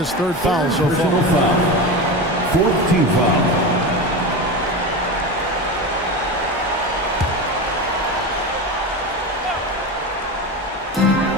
third foul so far. Fourth team foul.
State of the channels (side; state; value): both; normal; correlation 0.23